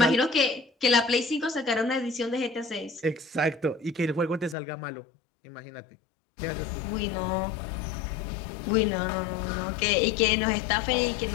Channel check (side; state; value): right; drops out; at 4.5 s